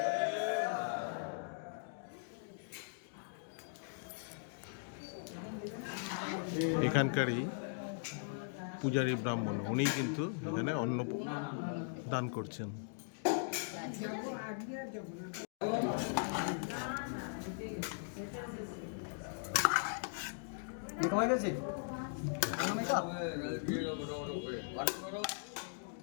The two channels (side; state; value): right; silent; digital silence